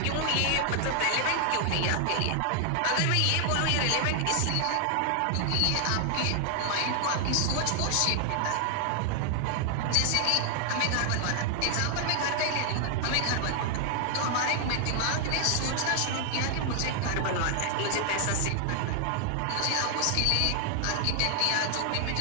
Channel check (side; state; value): both; different; correlation 0.00